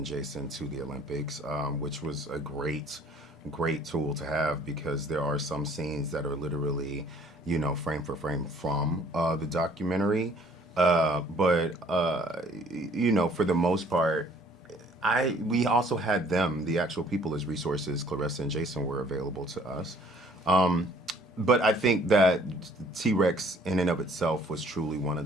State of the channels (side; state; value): both; normal; correlation 0.57